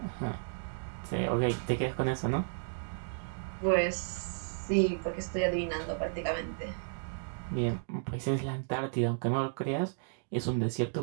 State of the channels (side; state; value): left; silent; digital silence